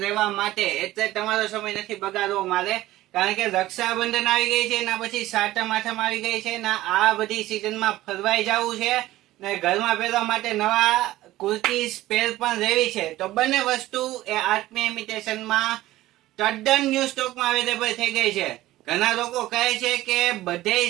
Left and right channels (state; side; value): quieter; left; 16.1 dB